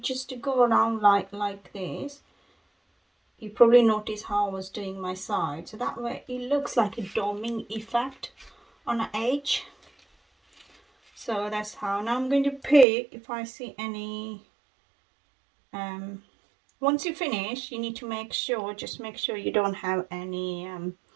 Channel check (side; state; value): left; drops out; at 12.9 s